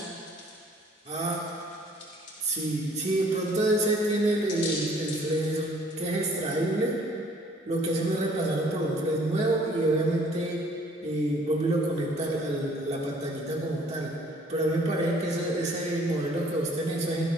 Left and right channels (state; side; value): normal; both; correlation 0.58